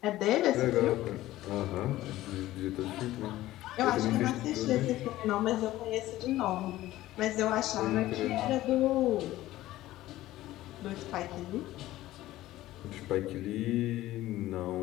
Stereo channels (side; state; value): right; quieter; 15.7 dB